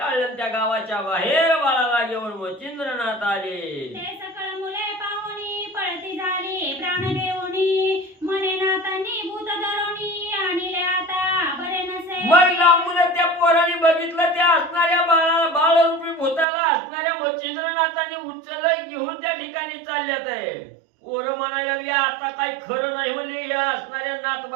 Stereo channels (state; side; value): drops out; left; at 16.4 s